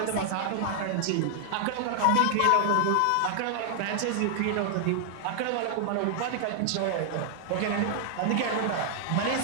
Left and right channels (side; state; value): both; different; correlation 0.00